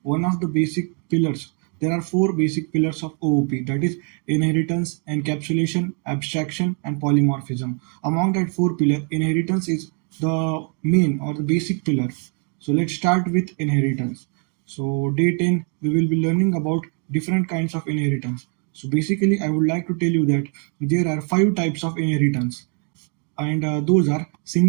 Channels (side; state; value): left; quieter; 37.7 dB